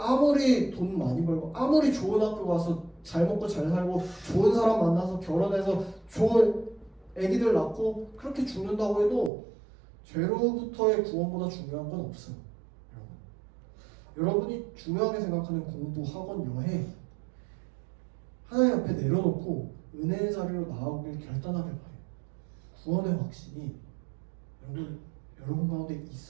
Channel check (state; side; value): drops out; left; at 9.3 s